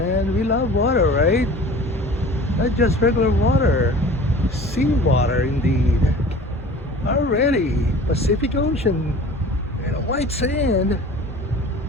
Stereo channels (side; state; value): both; normal; correlation 0.42